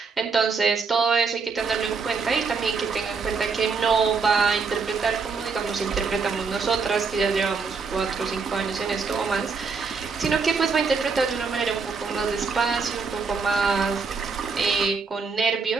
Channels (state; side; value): quieter; left; 5.0 dB